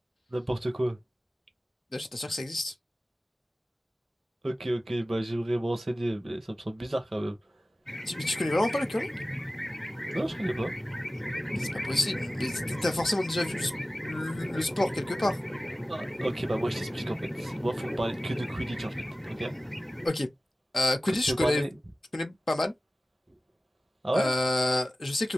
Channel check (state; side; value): normal; both; correlation 0.96